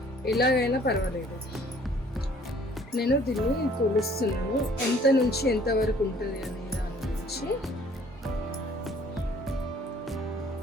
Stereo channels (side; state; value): both; normal; correlation 0.57